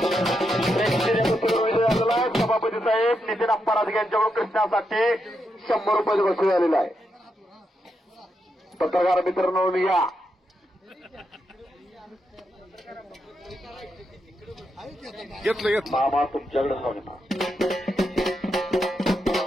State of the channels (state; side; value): normal; both; correlation 0.83